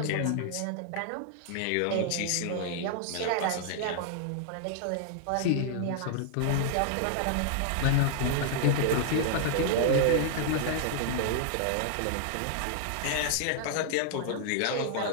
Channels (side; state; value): both; different; correlation -0.01